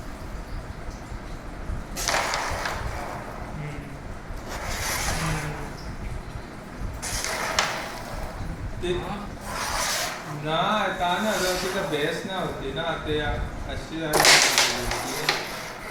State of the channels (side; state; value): both; identical; correlation 1.00